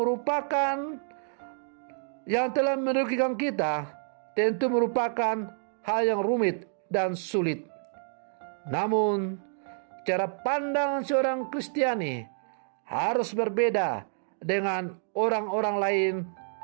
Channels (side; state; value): left; silent; digital silence